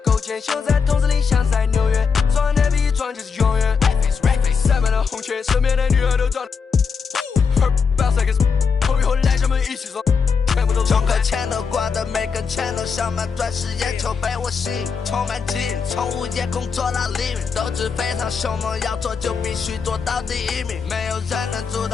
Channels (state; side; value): quieter; right; 5.7 dB